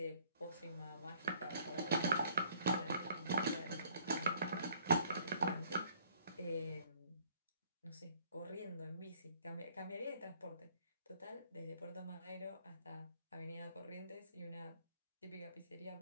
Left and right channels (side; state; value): both; inverted; correlation -0.60